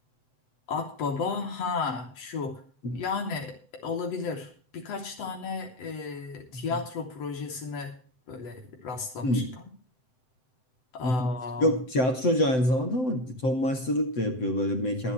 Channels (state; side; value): late; right; 7.8 ms